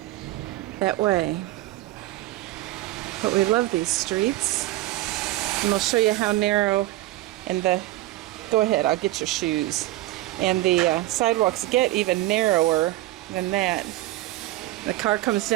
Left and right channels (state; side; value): quieter; left; 16.6 dB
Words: that way. But we love these streets. And we'll show you how narrow and go ahead, I'll get your shoes. And the sidewalks get even narrower than that. The car comes